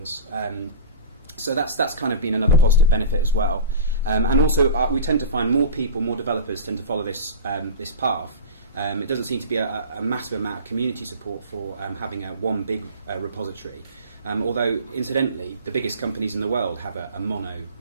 So that's kind of been another positive benefit as well. And also we tend to find more developers tend to follow this path. It doesn't seem to be a massive amount of community support for having one big repository. Although, incidentally, the biggest companies in the world have a mono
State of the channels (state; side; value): inverted; both; correlation -0.31